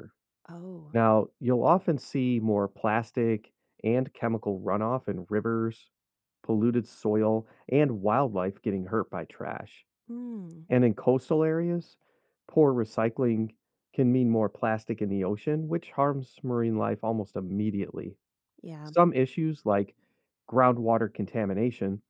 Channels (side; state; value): both; identical; correlation 1.00